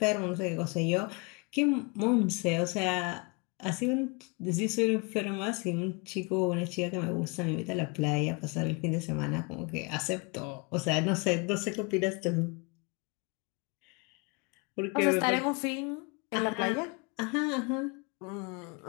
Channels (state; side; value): quieter; right; 29.8 dB